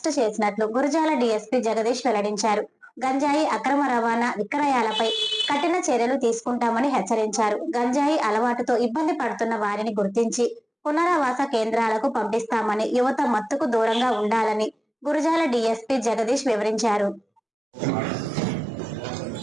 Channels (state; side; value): normal; both; correlation 0.97